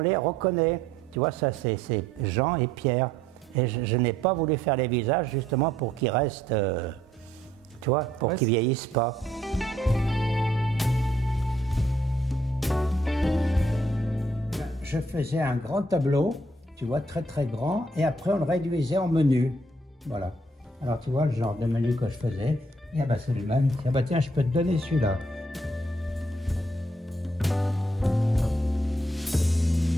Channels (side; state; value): both; normal; correlation 0.68